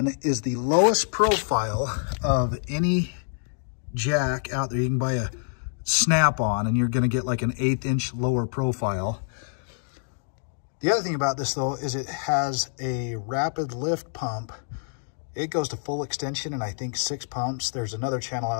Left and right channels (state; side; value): silent; right; digital silence